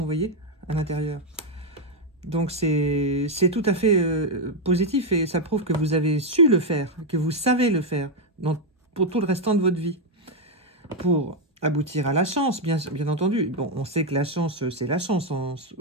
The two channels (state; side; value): normal; both; correlation 0.02